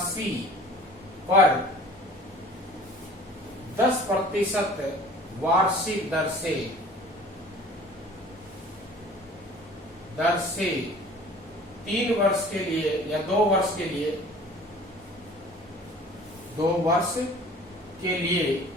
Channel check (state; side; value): normal; both; correlation 0.47